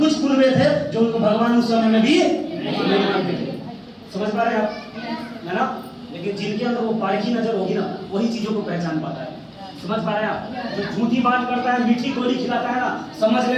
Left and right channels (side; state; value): both; identical; correlation 1.00